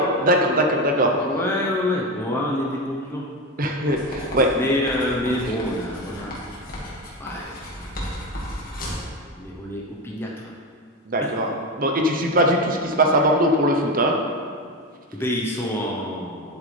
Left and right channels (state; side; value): normal; both; correlation 0.18